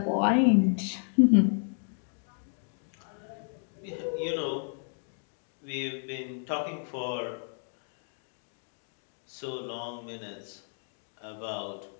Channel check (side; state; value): right; silent; 56 dB below the other